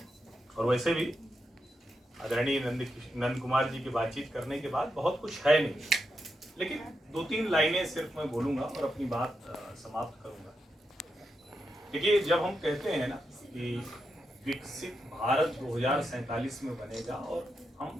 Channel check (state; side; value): normal; both; correlation 0.85